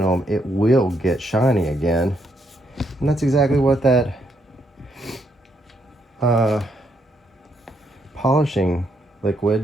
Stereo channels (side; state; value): both; normal; correlation 0.76